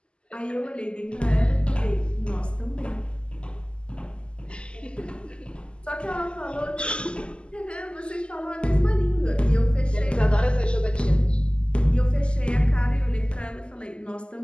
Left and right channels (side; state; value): right; late; 0.051 ms